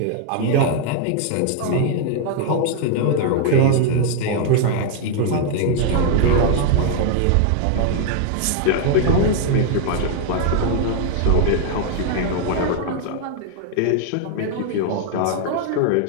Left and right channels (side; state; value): both; different; correlation 0.00